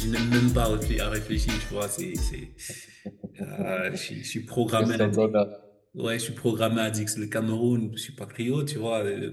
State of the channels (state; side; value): identical; both; correlation 1.00